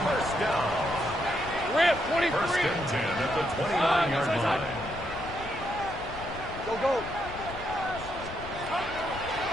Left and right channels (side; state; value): left; noise; rumble, 13 dB below the sound